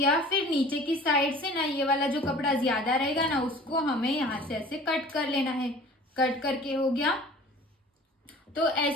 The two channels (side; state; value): both; normal; correlation 0.45